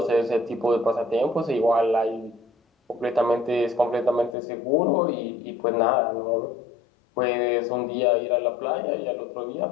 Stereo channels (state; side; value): drops out; right; at 4.4 s